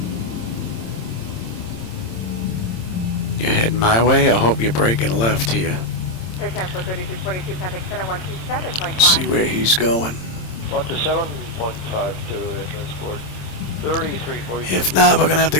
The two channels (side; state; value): right; late; 26 ms